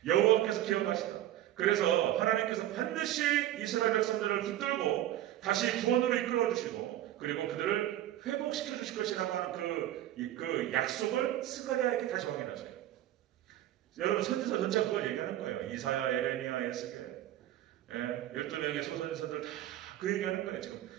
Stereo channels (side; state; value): left; quieter; 13.3 dB